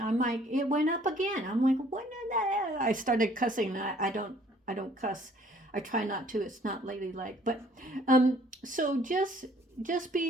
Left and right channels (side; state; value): both; normal; correlation 0.59